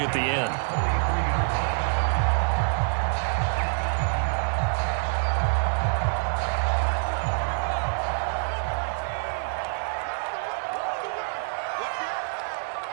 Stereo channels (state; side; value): silent; left; 61 dB below the other